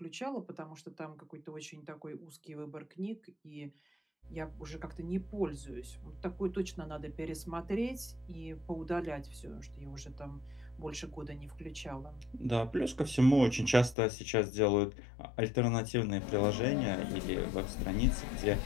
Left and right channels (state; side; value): drops out; right; at 14.0 s